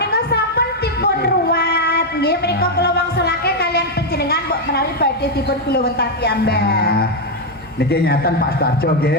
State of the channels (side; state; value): both; normal; correlation 0.02